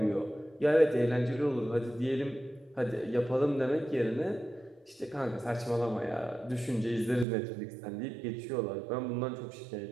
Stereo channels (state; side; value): drops out; left; at 7.2 s